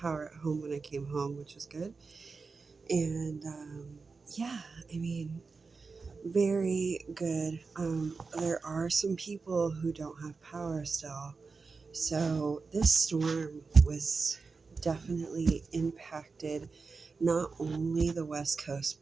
at home when I came home, which was good. And yeah, I mean, very good. There are some people who don't have power still. So this storm was definitely impacted not only the West Coast,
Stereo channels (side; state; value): left; quieter; 4.5 dB